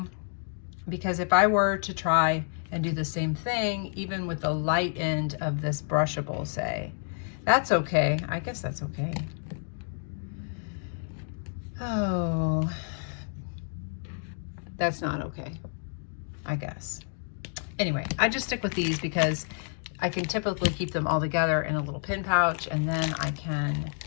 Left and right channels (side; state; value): right; silent; 58 dB below the other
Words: because if I were to try and do the same thing, even with the light end of this brushable, say, that's okay. I guess that's okay. Oh, that's not okay, I guess. Anyway, I just stick with these because I can typically keep them all together in a little pin pouch, and then I can,